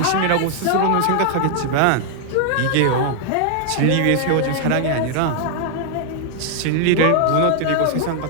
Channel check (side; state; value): both; different; correlation 0.00